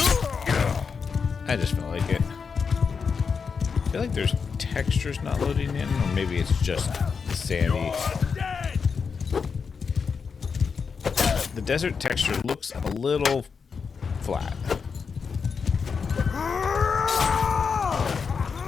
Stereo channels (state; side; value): quieter; right; 5.7 dB